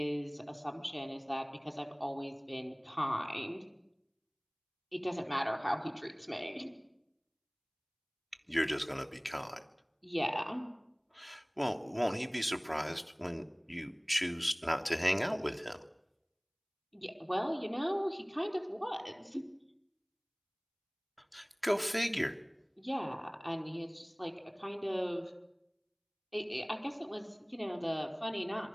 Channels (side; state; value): both; identical; correlation 1.00